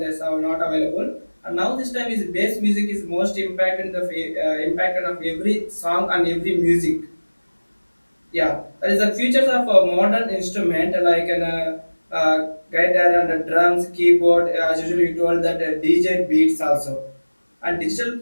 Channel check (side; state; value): both; inverted; correlation -1.00